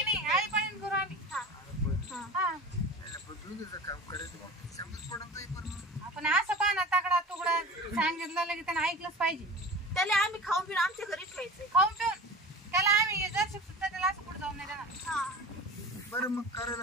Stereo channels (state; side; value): normal; both; correlation 0.36